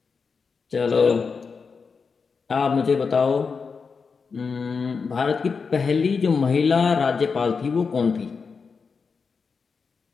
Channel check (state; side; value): quieter; right; 5.2 dB